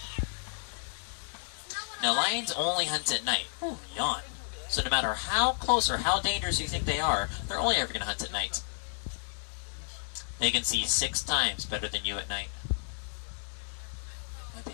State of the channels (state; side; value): silent; right; digital silence